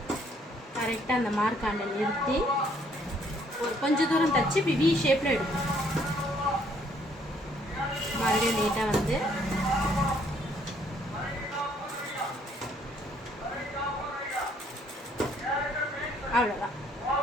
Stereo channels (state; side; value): normal; both; correlation 0.65